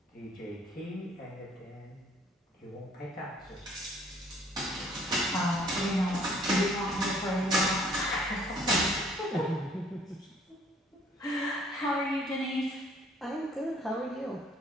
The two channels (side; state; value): both; normal; correlation 0.59